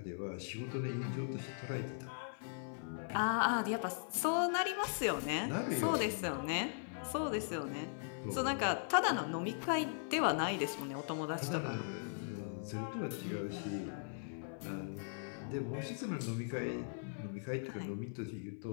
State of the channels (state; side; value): silent; right; 52 dB below the other